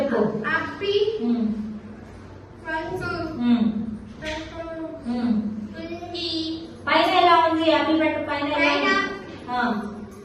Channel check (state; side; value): identical; both; correlation 1.00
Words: పైన ఎలా ఉంది? యాపిల్ పండు పైన